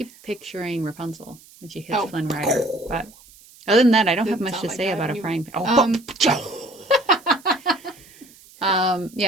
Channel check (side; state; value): right; noise; hiss, 24 dB below the sound